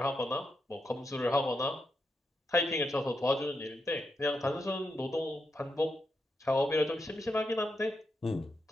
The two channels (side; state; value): both; normal; correlation 0.84